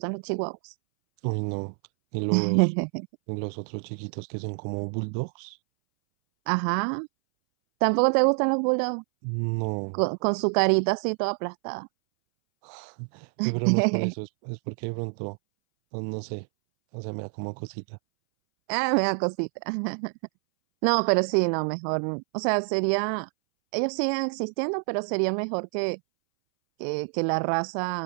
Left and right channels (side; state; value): left; silent; 60 dB below the other